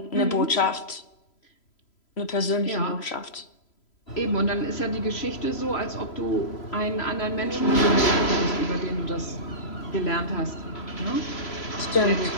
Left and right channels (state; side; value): late; right; 3.0 ms